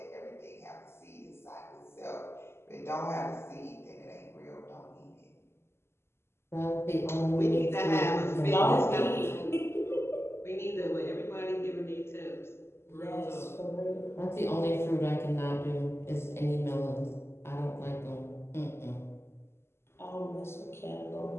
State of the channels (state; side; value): late; right; 0.12 ms